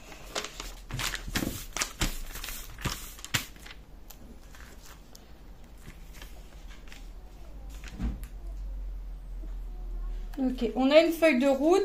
Ok, on a une feuille de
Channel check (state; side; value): identical; both; correlation 1.00